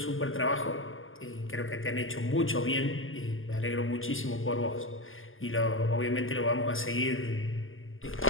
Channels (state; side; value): late; right; 0.59 ms